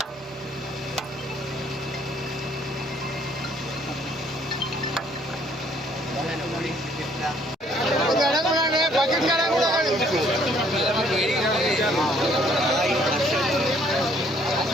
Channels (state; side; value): normal; both; correlation 0.63